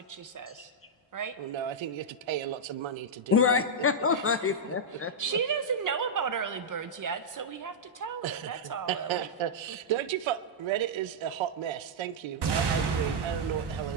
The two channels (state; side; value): normal; both; correlation -0.06